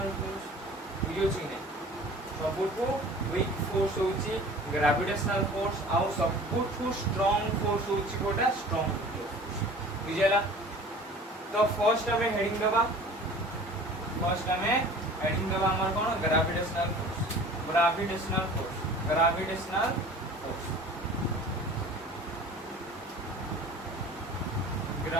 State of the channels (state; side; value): normal; both; correlation 0.44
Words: फोर्स। बुझियोछि कि नै? सबुठु वीक फोर्स होची ग्रेविटेशनल फोर्स आ सबुठु स्ट्रांग फोर्स होची कोटा स्ट्रांग फोर्स। बुझियला? तो फर्स्ट हमें हेडिंग दबा हमर कोन gravitational force. Gravitational force